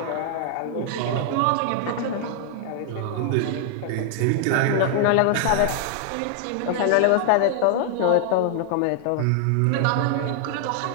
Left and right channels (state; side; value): different; both; correlation 0.00